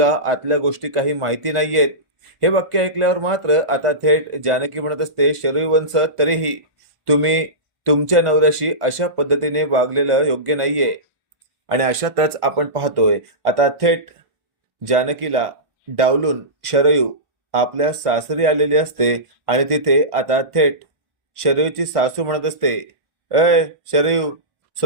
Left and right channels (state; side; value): late; left; 1.5 ms